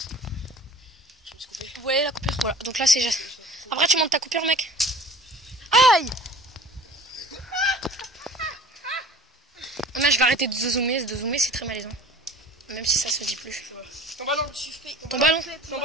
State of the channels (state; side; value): normal; both; correlation 0.44